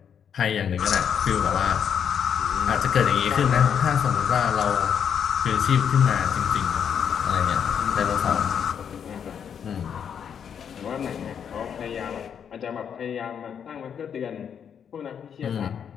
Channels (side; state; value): right; quieter; 7.9 dB